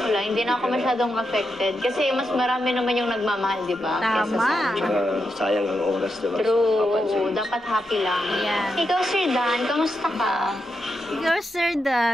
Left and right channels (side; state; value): both; normal; correlation 0.85